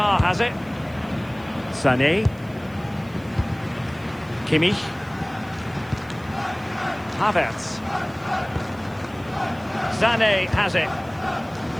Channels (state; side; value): noise; right; hiss, 27 dB below the sound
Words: has it. Sané. Kimmich. Havertz. Sané has it.